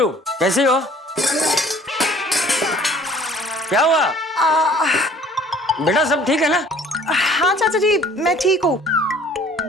कैसी हो? क्या हुआ? बेटा सब ठीक है ना? हाँ चाचा जी, मैं ठीक हूँ।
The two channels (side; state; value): both; normal; correlation 0.53